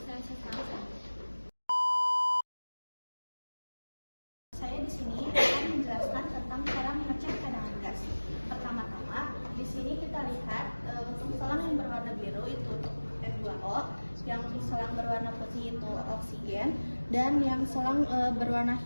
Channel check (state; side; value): inverted; both; correlation -1.00